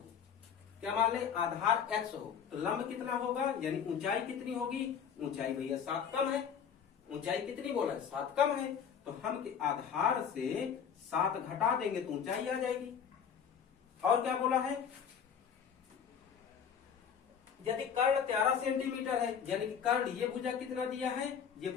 क्या मान लें? आधार x हो, तो लंब कितना होगा, यानी ऊंचाई कितनी होगी? ऊंचाई भैया 7 कम है। ऊंचाई कितनी बोला है? 7 कम है। तो हम आधार से 7 घटा देंगे तो ऊंचाई आ जाएगी। और क्या बोला है? यदि कर्ण 13 सेंटीमीटर है, यानी कि कर्ण ये भुजा कितना दिया है? ये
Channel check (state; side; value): quieter; right; 7.6 dB